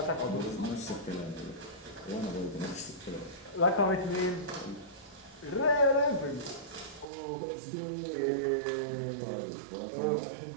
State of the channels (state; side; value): drops out; left; at 7.1 s